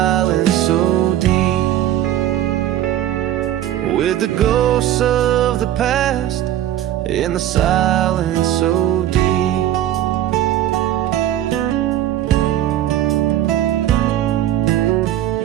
so deep. With the ghosts of the past in the silence so deep.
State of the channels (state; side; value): quieter; left; 12.3 dB